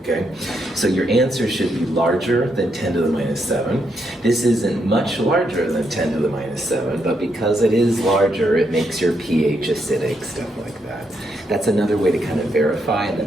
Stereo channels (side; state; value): both; normal; correlation 0.78